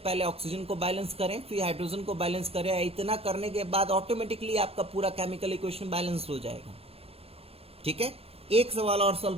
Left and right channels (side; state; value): left; late; 0.28 ms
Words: ऑक्सीजन को बैलेंस करें, फिर हाइड्रोजन को बैलेंस करें। इतना करने के बाद ऑटोमेटिकली आपका पूरा केमिकल इक्वेशन बैलेंस हो जाएगा। ठीक है, एक सवाल और सॉल्व